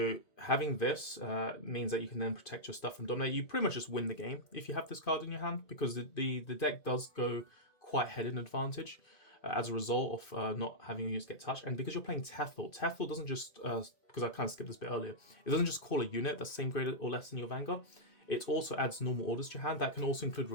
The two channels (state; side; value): late; right; 2.5 ms